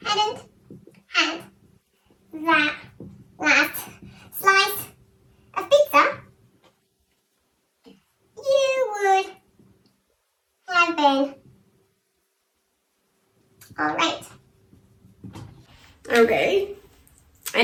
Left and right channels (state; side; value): identical; both; correlation 1.00